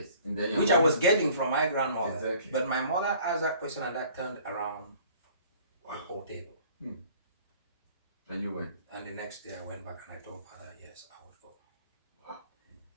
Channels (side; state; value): both; inverted; correlation -0.53